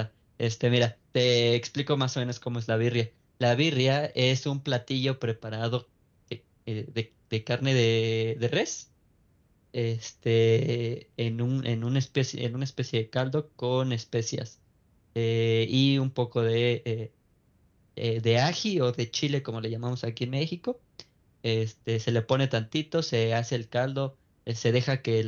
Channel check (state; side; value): identical; both; correlation 1.00